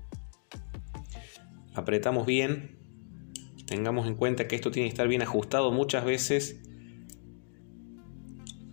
Apretamos bien. Tengamos en cuenta que esto tiene que estar bien ajustado. Muchas veces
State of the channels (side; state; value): right; silent; digital silence